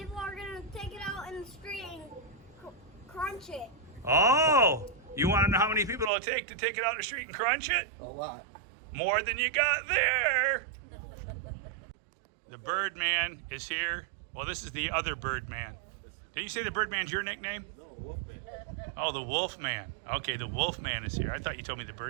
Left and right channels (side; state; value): left; drops out; at 6.1 s